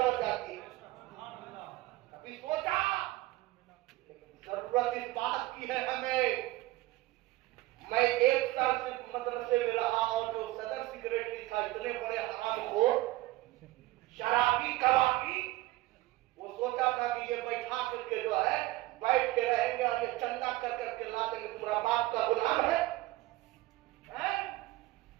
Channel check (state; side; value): quieter; left; 18.1 dB